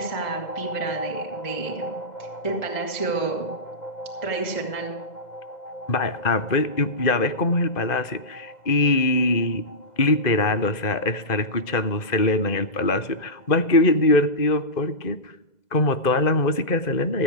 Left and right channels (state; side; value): late; right; 2.0 ms